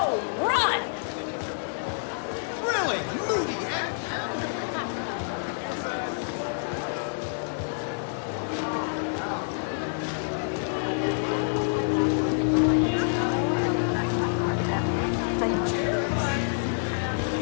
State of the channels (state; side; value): silent; right; digital silence